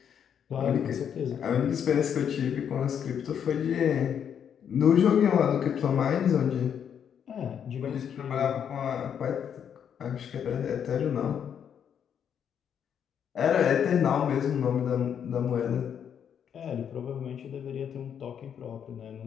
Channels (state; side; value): quieter; right; 8.3 dB